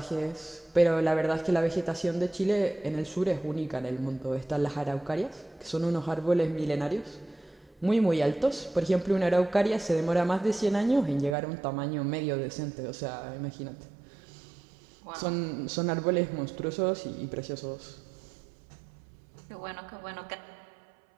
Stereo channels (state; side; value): drops out; left; at 11.4 s